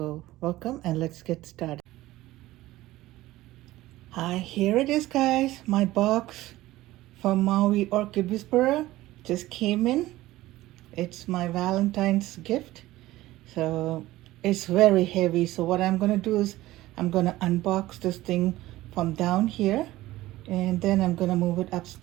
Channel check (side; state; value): left; quieter; 16.9 dB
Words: welcome and let's get started. Hi, here it is, guys. My box from MOW Orchid Whisperer just came in. It's my Valentine's gift. So it's very heavy. So what I'm gonna do is I'm gonna unbox this thing from down here and then I'm gonna move it